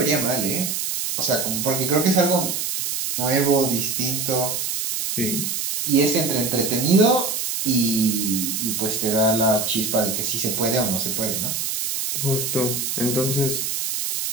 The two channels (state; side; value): noise; right; hiss, 2 dB below the sound